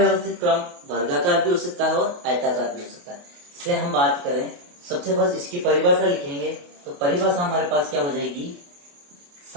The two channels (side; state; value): left; late; 28 ms